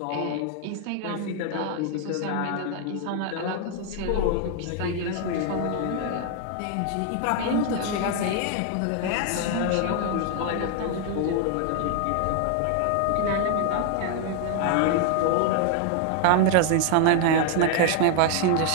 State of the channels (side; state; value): both; different; correlation 0.00